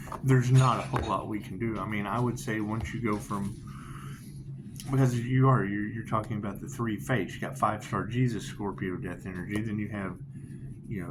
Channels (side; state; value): both; identical; correlation 1.00